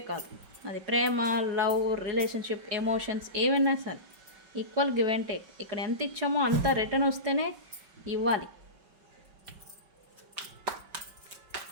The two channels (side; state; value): left; late; 5.3 ms